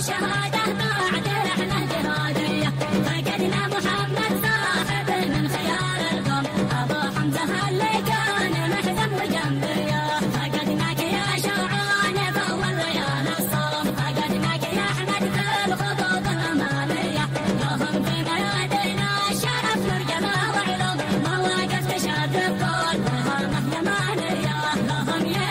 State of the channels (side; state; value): both; identical; correlation 1.00